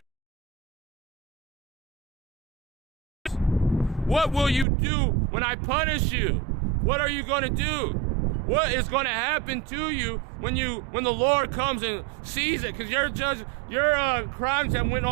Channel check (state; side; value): drops out; left; at 4.7 s